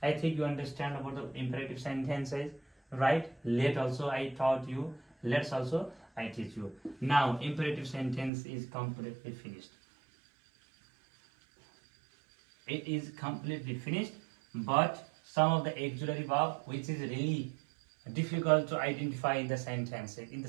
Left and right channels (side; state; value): left; drops out; at 8.3 s